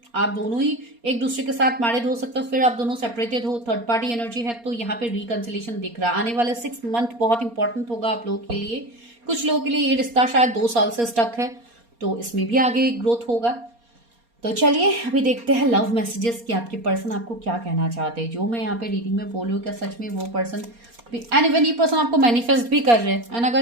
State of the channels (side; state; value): left; late; 4.3 ms